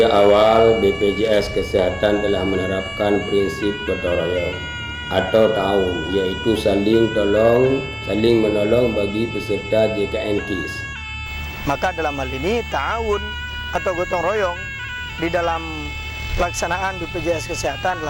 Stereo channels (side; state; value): both; identical; correlation 1.00